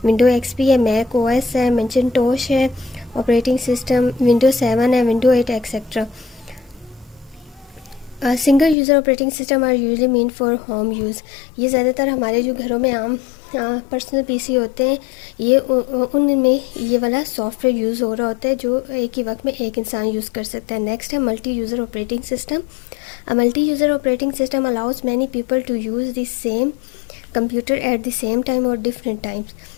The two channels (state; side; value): drops out; right; at 8.8 s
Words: विंडो एक्सपी है, मैक ओएस है, मैकिन्टोश है, ऑपरेटिंग सिस्टम विंडो 7 है, window 8 etcetera. Single user operating system are usually mean for home use. ये ज़्यादातर हमारे जो घरों में आम पर्सनल पीसी होते हैं ये उनमें ये वाला सॉफ्टवेयर यूज़ हो रहा होता है जो एक ही वक्त में एक इंसान यूज़ कर सकता है। नेक्स्ट है multi user operating system. A multi user operating system allows many people to use the same computer at the same time और डिफरेंट टाइम्स।